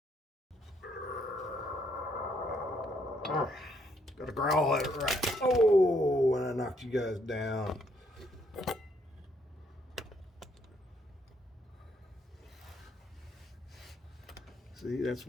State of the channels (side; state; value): both; normal; correlation 0.71